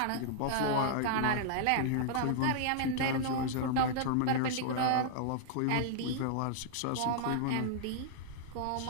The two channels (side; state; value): both; different; correlation -0.01